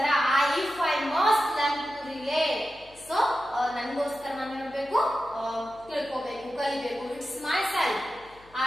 if I must learn to rely. So, nangoskara nanu enಬೇಕು ತಿಳ್ಕೋಬೇಕು ಕಲಿಬೇಕು. It's myself.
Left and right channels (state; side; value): noise; left; hum, 26 dB below the sound